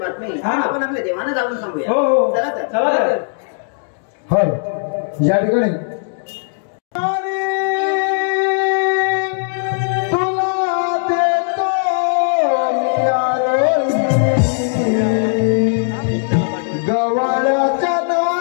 हा. आपण आपल्या देवानं जाऊन सांगूया हो हो चला तर चला तर हल या ठिकाणी तुला देतो मी आरोही, गव्हाळ्याच्या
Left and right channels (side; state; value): right; silent; digital silence